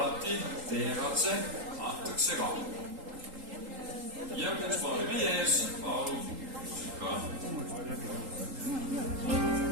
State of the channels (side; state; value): left; late; 3.8 ms